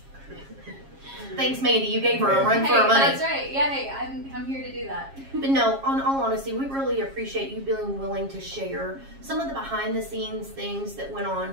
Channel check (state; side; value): late; left; 7.4 ms